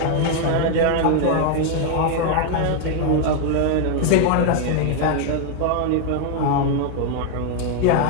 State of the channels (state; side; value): different; both; correlation 0.00